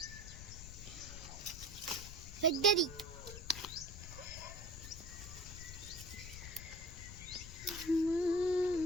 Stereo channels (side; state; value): left; noise; rumble, 11 dB below the sound